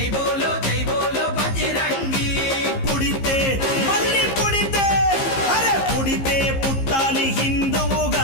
బోలో బజరంగి. పుడితే మళ్ళీ పుడితే, అరే పుడితే పుట్టాలి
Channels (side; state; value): right; late; 15 ms